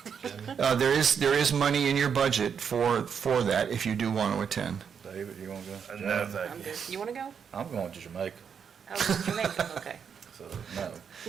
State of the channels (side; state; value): left; quieter; 7.1 dB